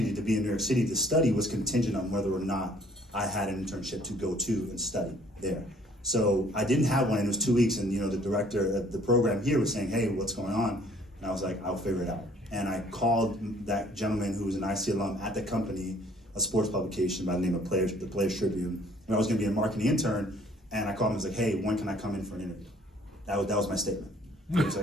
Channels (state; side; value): normal; both; correlation 0.58